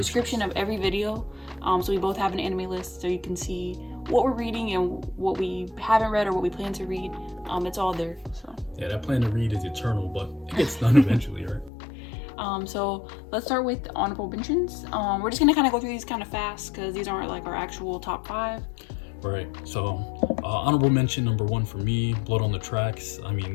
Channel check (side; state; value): right; drops out; at 11.7 s